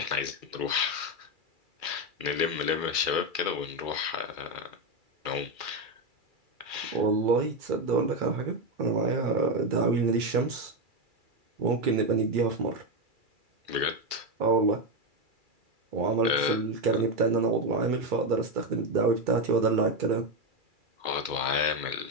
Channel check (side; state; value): left; late; 2.3 ms